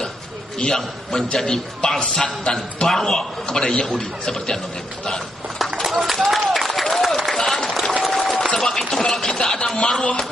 yang menjadi bangsat dan barwa kepada Yahudi seperti Anwar Ibrahim. Sebab itu kalau kita ada marwah,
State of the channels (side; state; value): both; normal; correlation 0.78